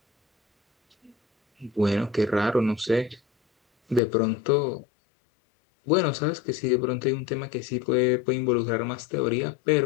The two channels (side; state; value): right; drops out; at 4.0 s